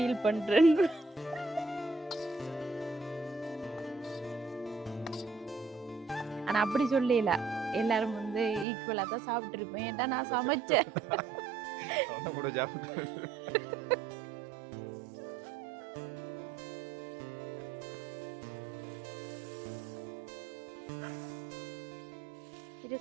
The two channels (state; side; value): drops out; left; at 8.7 s